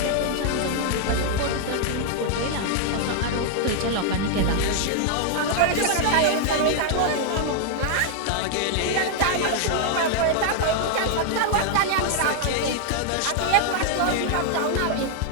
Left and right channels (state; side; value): different; both; correlation 0.00